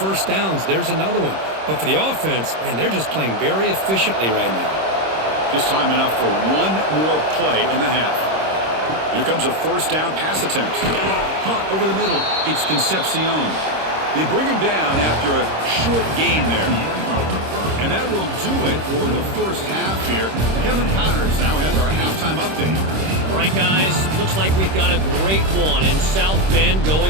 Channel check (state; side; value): late; left; 26 ms